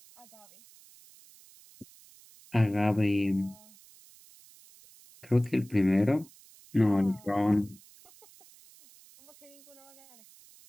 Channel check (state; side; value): noise; right; hiss, 25 dB below the sound